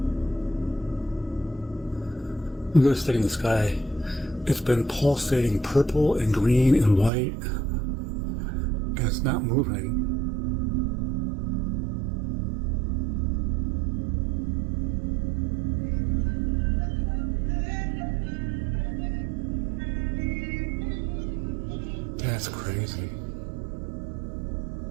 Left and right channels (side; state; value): left; drops out; at 7.1 s